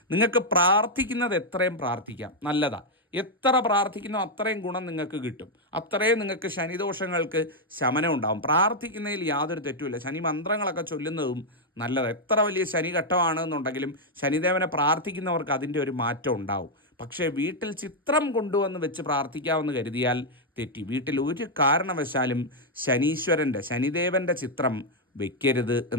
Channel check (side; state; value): both; normal; correlation -0.01